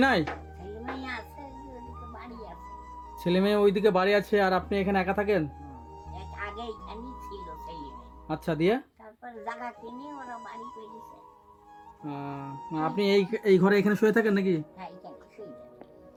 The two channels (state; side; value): identical; both; correlation 1.00